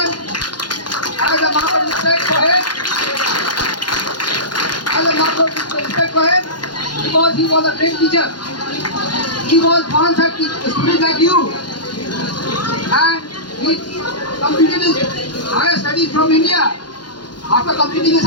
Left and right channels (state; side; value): late; right; 0.71 ms